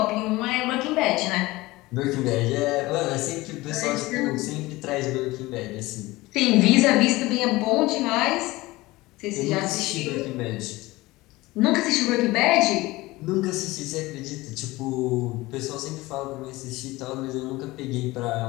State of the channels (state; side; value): quieter; right; 20.0 dB